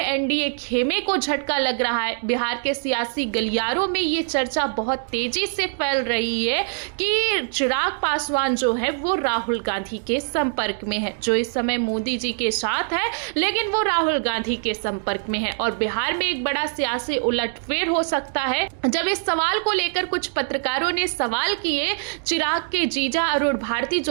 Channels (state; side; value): silent; left; digital silence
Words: एनडीए खेमे को झटका लग रहा है। बिहार के सियासी गलियारों में ये चर्चा बहुत तेजी से फैल रही है कि चिराग पासवान जो है वो राहुल गांधी के संपर्क में है, जो इस समय मोदी जी के साथ है लेकिन वो राहुल गांधी के संपर्क में है। और बिहार में एक बड़ा सियासी उलटफेर हो सकता है। जब इस सवाल को लेकर कुछ पत्रकारों ने सवाल किए चिराग के जीजा अरुण भारती,